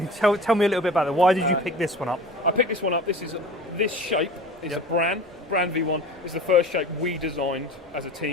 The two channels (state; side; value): normal; both; correlation 0.38